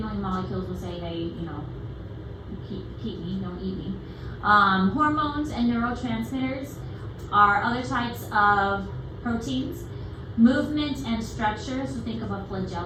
molecules will say, hey, you know, keep me, don't eat me. Hormones and neurotransmitters are other types of proteins. Movement and structure, so think of a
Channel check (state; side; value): identical; both; correlation 1.00